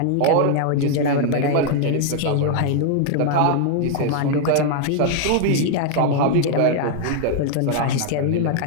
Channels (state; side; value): different; both; correlation 0.00